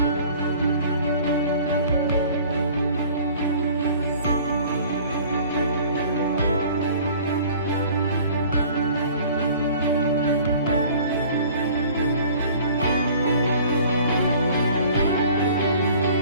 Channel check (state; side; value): inverted; both; correlation -0.49